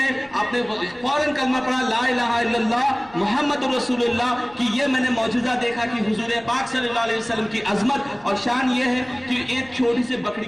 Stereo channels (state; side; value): noise; left; rumble, 27 dB below the sound